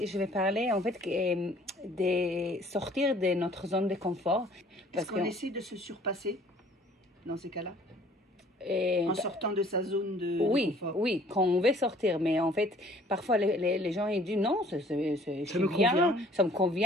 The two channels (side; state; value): both; normal; correlation 0.55